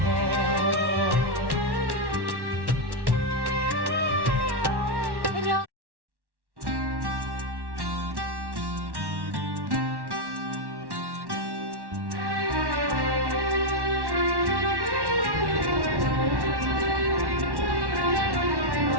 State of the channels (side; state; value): left; late; 1.1 ms